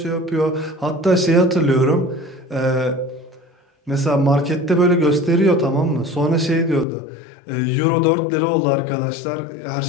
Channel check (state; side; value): drops out; right; at 6.9 s